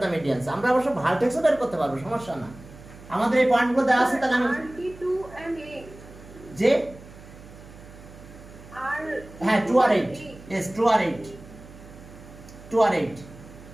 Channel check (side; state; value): right; noise; hum, 19 dB below the sound